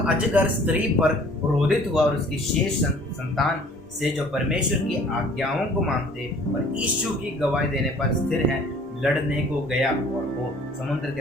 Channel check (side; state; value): both; normal; correlation 0.53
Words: अजगर स्त्री पर क्रोधित हुआ और उसकी शेष संतान से जो परमेश्वर की आज्ञाओं को मानते और यीशु की गवाही देने पर स्थिर हैं लड़ने को गया, और वो समुद्र के